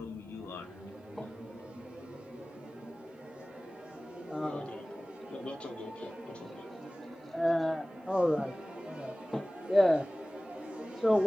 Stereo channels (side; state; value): both; normal; correlation 0.98